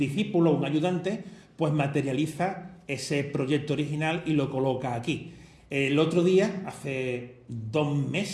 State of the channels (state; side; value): identical; both; correlation 1.00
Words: un ayudante, pues materializa ese proyecto original y lo coloca aquí. El otro día, hace 2